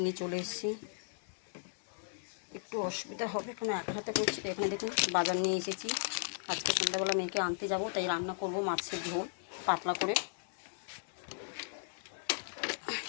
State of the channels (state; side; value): silent; right; digital silence